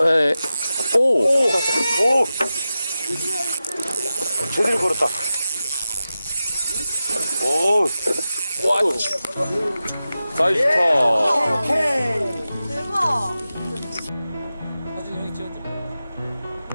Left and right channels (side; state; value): both; inverted; correlation -0.94